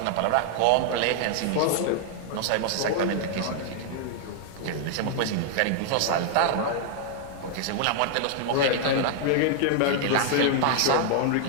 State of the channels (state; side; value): different; both; correlation 0.00